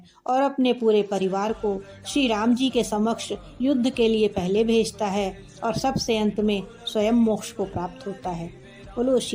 और अपने पूरे परिवार को श्री राम जी के समक्ष युद्ध के लिए पहले भेजता है, और सबसे अंत में स्वयं मोक्ष को प्राप्त होता है। बोलो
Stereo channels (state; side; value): identical; both; correlation 1.00